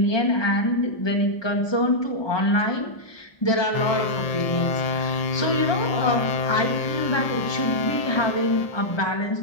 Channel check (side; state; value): right; late; 1.2 ms